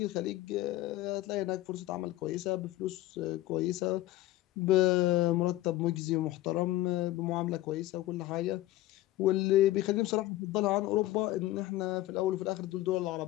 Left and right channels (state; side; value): quieter; right; 16.1 dB